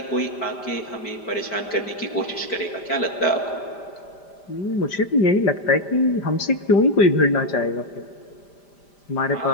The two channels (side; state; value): right; late; 5.0 ms